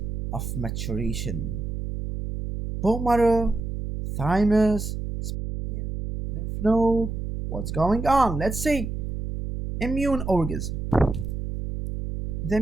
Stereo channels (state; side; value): noise; right; hum, 4 dB below the sound